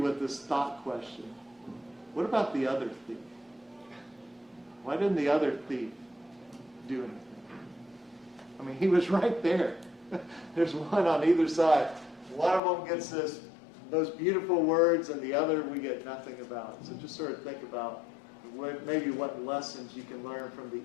this thought question. What about the other thief? Why didn't the other thief do anything? I mean, he was right there. There's one on either side. One of them gets those beautiful words, and the other we get nothing about. So just sort of think about maybe what lessons you can learn from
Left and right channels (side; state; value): right; drops out; at 12.6 s